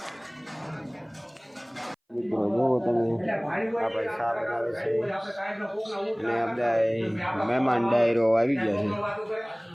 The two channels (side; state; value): both; identical; correlation 1.00